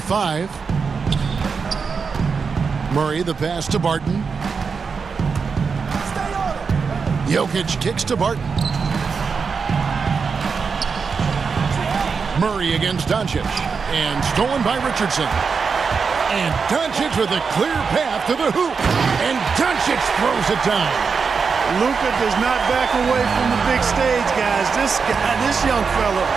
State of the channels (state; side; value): quieter; left; 5.4 dB